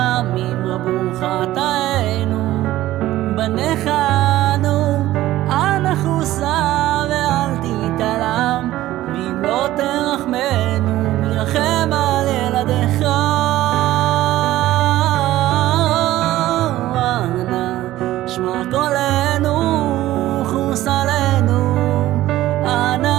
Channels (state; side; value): quieter; left; 15.2 dB